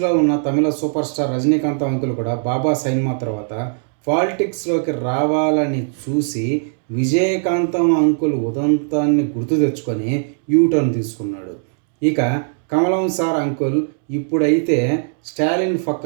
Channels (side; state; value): left; silent; 67 dB below the other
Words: ఉన్న తమిళ సూపర్ స్టార్ రజనీకాంత్ అంకుల్ కూడా బాబా సైన్మా తర్వాత పాలిటిక్స్లోకి రావాలని చూసి విజయకాంతం అంకుల్ ఉదంతాన్ని గుర్తు తెచ్చుకొని యూటర్న్ తీసుకున్నాడు. ఇక కమలం సార్ అంకుల్ ఇప్పుడైతే స్టాలిన్